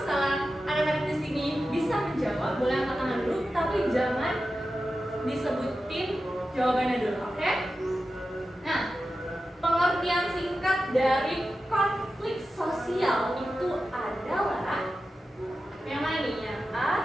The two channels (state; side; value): normal; both; correlation 0.92